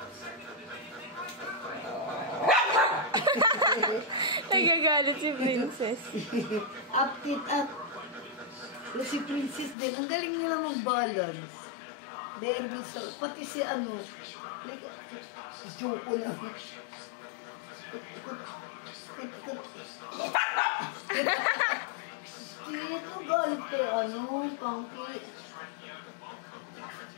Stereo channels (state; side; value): drops out; right; at 9.8 s